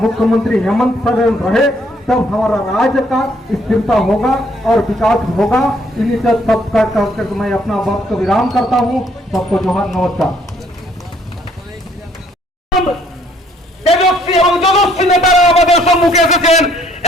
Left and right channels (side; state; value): both; normal; correlation 0.65